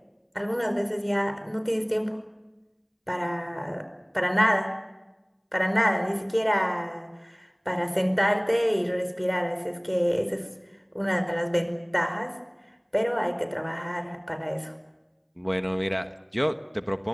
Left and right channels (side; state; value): both; identical; correlation 1.00